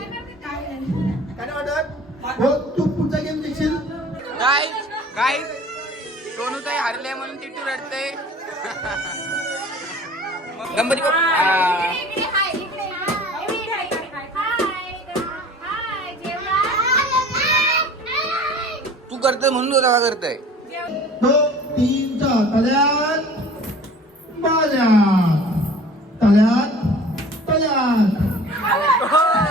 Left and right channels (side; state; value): both; normal; correlation 0.45